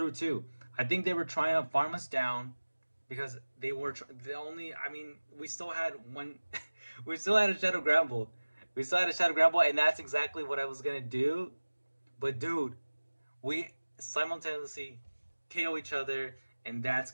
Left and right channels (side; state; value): both; inverted; correlation -1.00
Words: too. I think they were trying to farm us down. Because they were we still had one, we still had a Shadow Gramble. We still had a Shadow Gramble, and that's exactly what I was going to do. But dude, we simultaneously KO each other, and that's